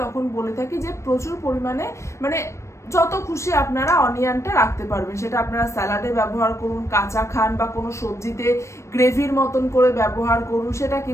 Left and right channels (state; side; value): late; right; 0.14 ms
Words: তখন বলে থাকি যে প্রচুর পরিমাণে যত খুশি আপনারা অনিয়নটা রাখতে পারবেন, সেটা আপনারা স্যালাডে ব্যবহার করুন, কাঁচা খান, বা কোনো সবজিতে গ্রেভির মতন করে ব্যবহার করুন, সেটা